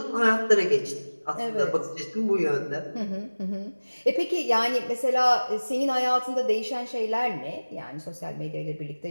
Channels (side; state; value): both; inverted; correlation -1.00